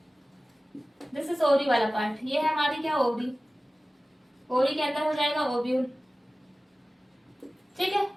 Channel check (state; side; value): normal; both; correlation 0.96